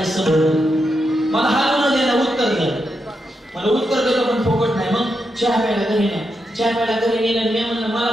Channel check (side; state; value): both; normal; correlation 0.85